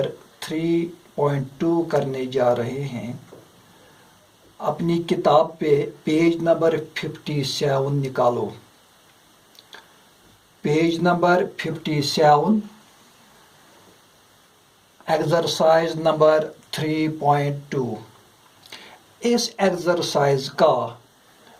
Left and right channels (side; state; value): both; identical; correlation 1.00